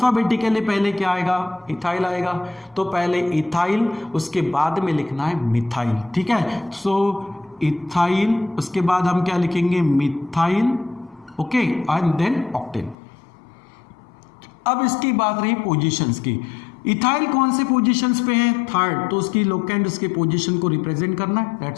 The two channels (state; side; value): drops out; right; at 13.0 s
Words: पहले क्या आएगा, इथाइल आएगा। तो पहले इथाइल, उसके बाद में लिखना है मिथाइल। ठीक है, सो इथाइल, उसके बाद हम क्या लिखेंगे, methyl. Okay, and then octane. अब इसकी बात रही पोजीशंस की। इथाइल कौन से पोजीशंस पे है, थर्ड, तो उसकी लोकेंट उसके पोजीशन को रिप्रेजेंट करना है,